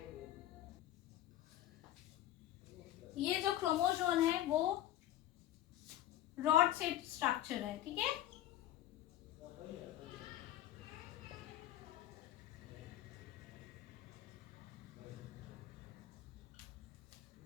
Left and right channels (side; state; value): right; quieter; 13.2 dB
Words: ये जो क्रोमोसोम है वो रॉड शेप स्ट्रक्चर है, ठीक है।